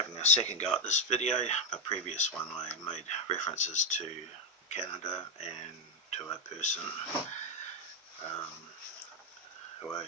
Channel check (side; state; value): both; normal; correlation 0.02